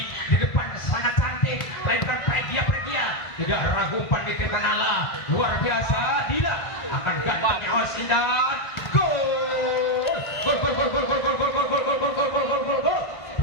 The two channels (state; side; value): late; right; 1.5 ms